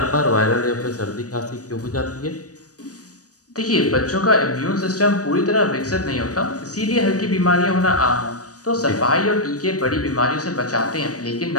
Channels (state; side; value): late; right; 0.67 ms